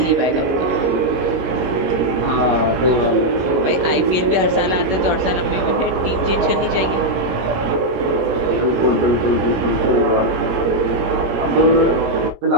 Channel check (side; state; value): left; late; 17 ms